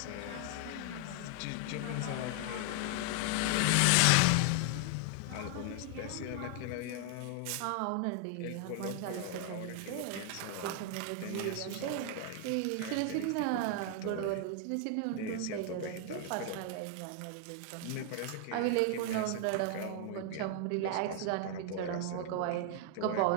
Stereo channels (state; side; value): different; both; correlation 0.00